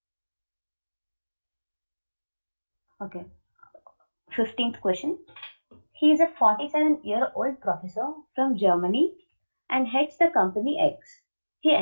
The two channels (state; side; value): inverted; both; correlation -1.00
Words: Okay. 15th question. He is a 47-year-old professor from Germany and heads the company X. He